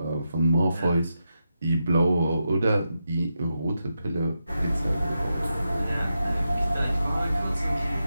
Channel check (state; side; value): inverted; both; correlation -0.87